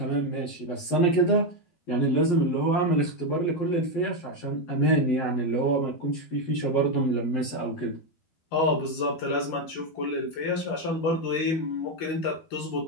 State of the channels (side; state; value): right; late; 11 ms